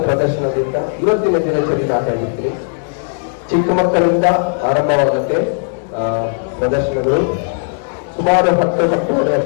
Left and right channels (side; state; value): right; silent; digital silence